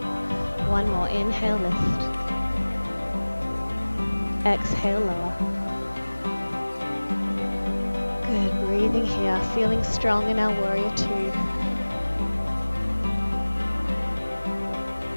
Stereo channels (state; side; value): inverted; both; correlation -1.00